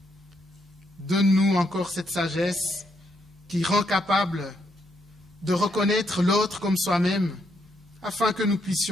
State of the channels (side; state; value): both; normal; correlation 0.76